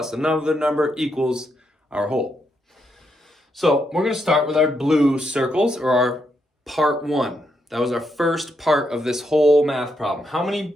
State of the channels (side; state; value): both; normal; correlation 0.80